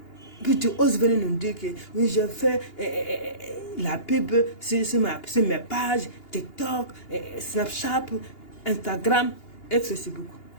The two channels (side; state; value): right; late; 2.8 ms